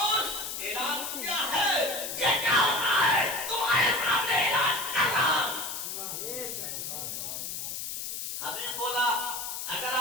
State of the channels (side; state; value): left; noise; hiss, 5 dB below the sound